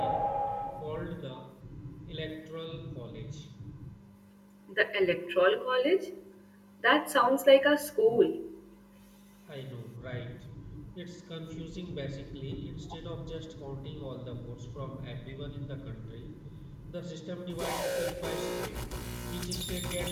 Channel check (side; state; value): both; identical; correlation 1.00